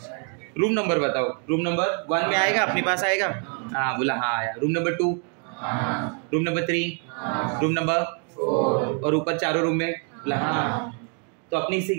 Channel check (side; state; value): left; quieter; 38.6 dB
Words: रूम नंबर बताओ। रूम नंबर 1 में आएगा, अपने पास आएगा? हाँ बोला, हाँ आया। Room number 2, room number 3, room number 4, और ऊपर चारों रूम में बोला हाँ। तो अपने हिस्से